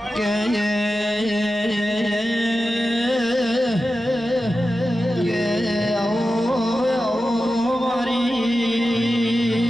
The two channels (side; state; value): both; normal; correlation 0.92